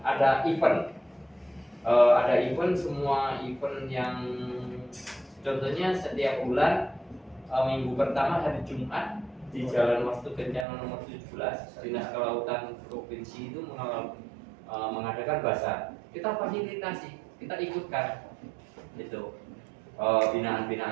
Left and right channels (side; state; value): left; drops out; at 10.7 s